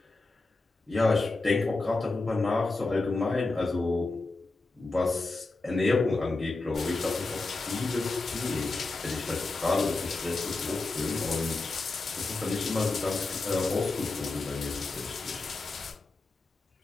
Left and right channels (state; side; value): quieter; right; 3.3 dB